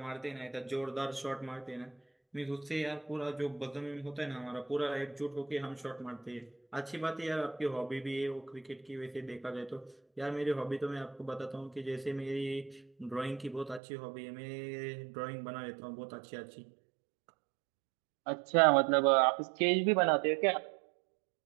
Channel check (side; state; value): left; drops out; at 13.8 s